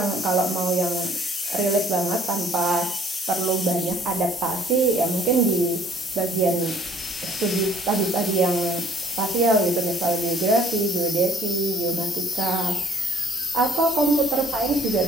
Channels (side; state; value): both; normal; correlation 0.58